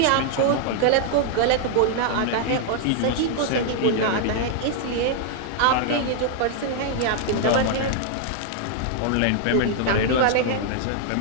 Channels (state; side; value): different; both; correlation 0.00